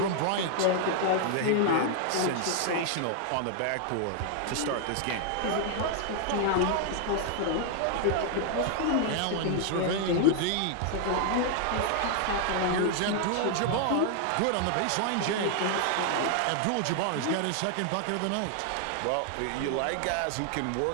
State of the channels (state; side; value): different; both; correlation 0.00